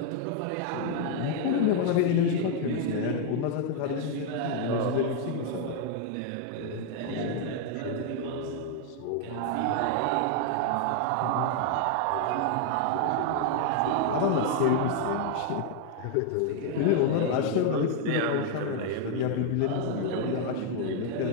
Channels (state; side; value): different; both; correlation 0.00